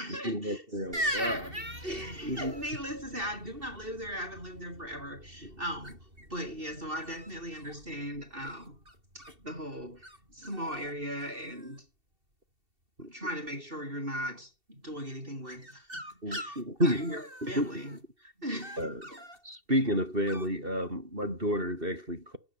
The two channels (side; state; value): left; late; 2.7 ms